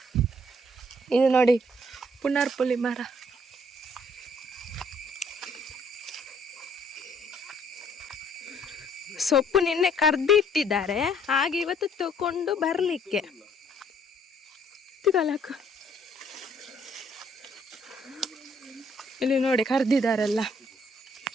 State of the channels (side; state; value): both; normal; correlation 0.63